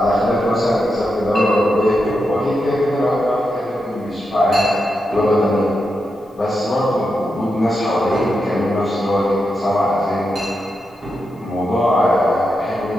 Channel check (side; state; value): both; normal; correlation 0.86